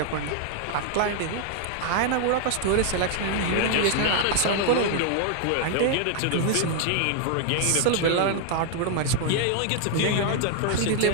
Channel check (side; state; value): both; different; correlation 0.00